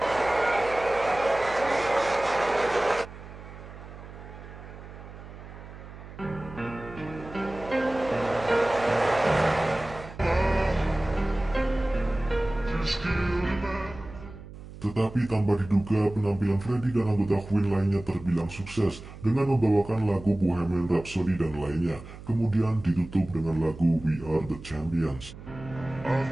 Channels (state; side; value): noise; right; hum, 15 dB below the sound